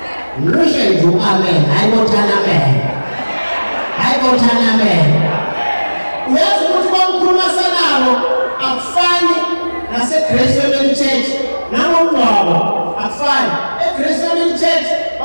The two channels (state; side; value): inverted; both; correlation -1.00